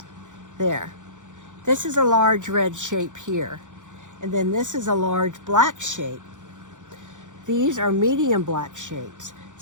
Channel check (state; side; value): late; left; 0.86 ms